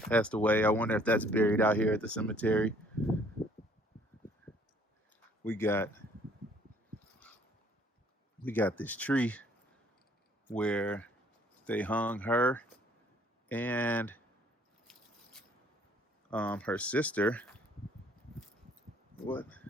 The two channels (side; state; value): both; normal; correlation 0.60